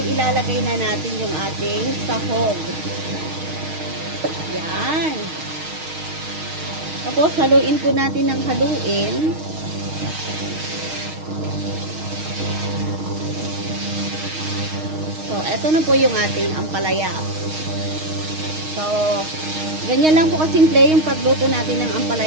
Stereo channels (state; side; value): late; left; 6.4 ms